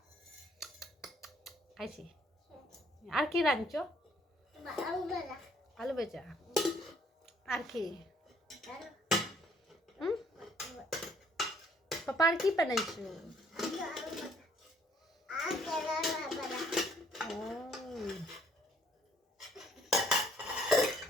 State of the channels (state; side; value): normal; both; correlation 0.64